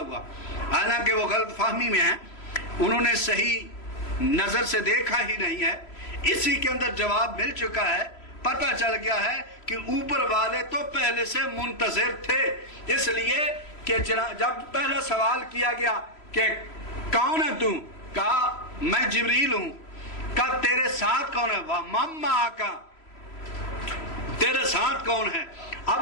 حالانکہ وہ غلط فہمی میں ہیں، انہوں نے صحیح نظر سے دیکھا ہی نہیں ہے۔ اسی کے اندر جواب مل چکا ہے، پتہ چل گیا ہے کہ اوپر والے تو پہلے سے منتظر تھے۔ اس لیے کہ جب پہلا سوال کیا گیا کہ کون ہے تو، کہا میں جبریل ہوں، کہا تیرے ساتھ کون ہے، وَمَمَّا آقا، تیرے ساتھ کون ہے۔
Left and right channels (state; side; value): late; right; 3.0 ms